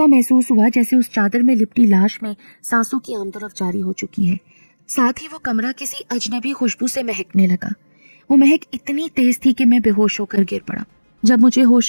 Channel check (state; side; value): inverted; both; correlation -1.00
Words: महसूस हुआ जैसे उस चादर में लिपटी लाश में सांसों की आमदरफ जारी हो चुकी है। साथ ही वो कमरा किसी अजनबी खुशबू से महकने लगा। वो महक इतनी तेज थी कि मैं बेहोश होकर गिर पड़ा। जब मुझे